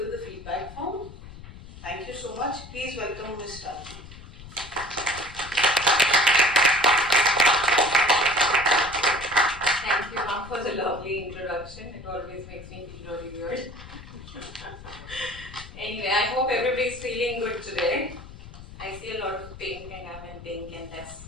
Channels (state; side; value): noise; left; rumble, 15 dB below the sound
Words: the feedback form? Thank you so much. Please welcome Ms. Rajput. Thank you, ma'am, for the lovely introduction. It always makes me feel really weird. Anyway, I hope everybody's feeling good today. I see a lot of pink and I'm in pink and let's